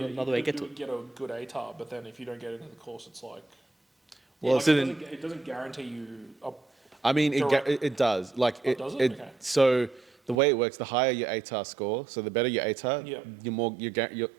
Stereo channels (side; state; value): left; drops out; at 10.4 s